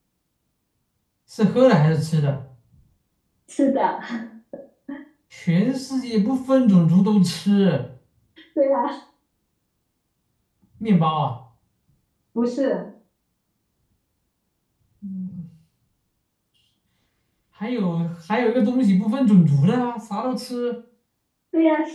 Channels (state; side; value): identical; both; correlation 1.00